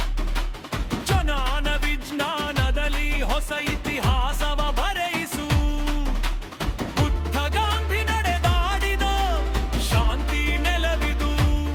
ಜ್ಞಾನ ವಿಜ್ಞಾನದಲ್ಲಿ ಹೊಸ ಇತಿಹಾಸವ ಬರೆಯಿಸು ಬುದ್ಧ ಗಾಂಧಿ ನಡೆದಾಡಿದ ಶಾಂತಿ ನೆಲವಿದು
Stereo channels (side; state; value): both; identical; correlation 1.00